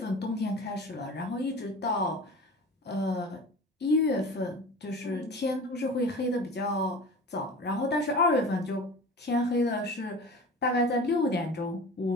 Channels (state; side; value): normal; both; correlation 0.37